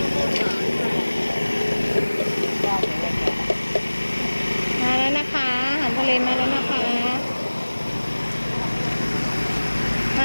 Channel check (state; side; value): inverted; both; correlation -1.00